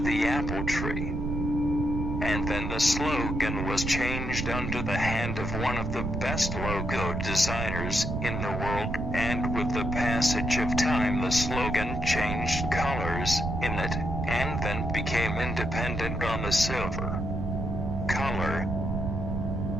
the apple tree. And then the slogan was changed under the hand of one of the best logo designers in the world, and with the passage of time the slogan changed colors in it, and then became independent on the silver color.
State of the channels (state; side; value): noise; right; rumble, 2 dB below the sound